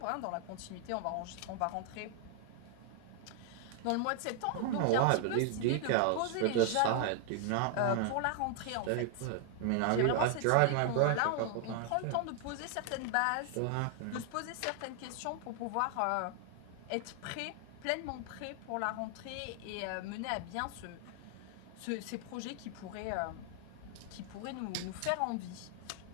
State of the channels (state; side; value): different; both; correlation 0.00